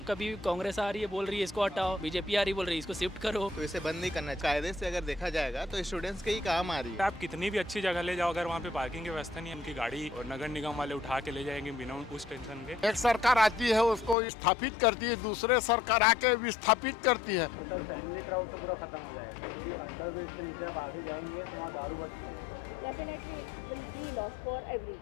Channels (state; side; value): drops out; right; at 14.2 s